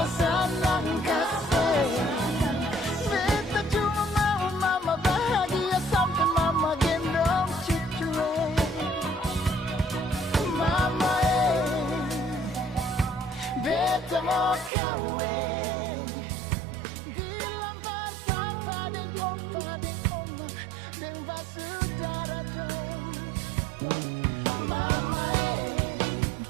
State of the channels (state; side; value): drops out; left; at 14.7 s